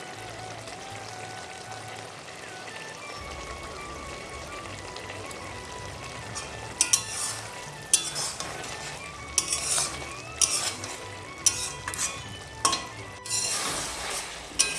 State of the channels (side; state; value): both; identical; correlation 1.00